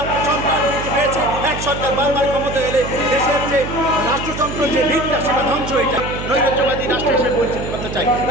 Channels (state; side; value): noise; right; hum, 7 dB below the sound